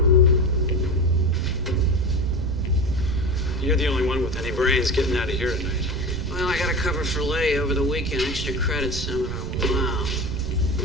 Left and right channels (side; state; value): right; noise; rumble, 5 dB below the sound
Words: You're the only one with any brains getting out of here tonight. Well, I got to cover for Lay over the weekend. Extra credit seminar. Wow.